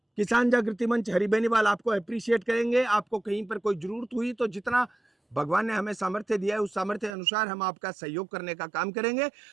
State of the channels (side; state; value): left; drops out; at 7.2 s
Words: किसान जागृति मंच हरि बेनीवाल आपको अप्रिशिएट करेंगे। आपको कहीं पर कोई जरूरत हुई तो जितना भगवान ने हमें सामर्थ्य दिया है उस सामर्थ्य अनुसार हम आपका सहयोग करने का काम करेंगे।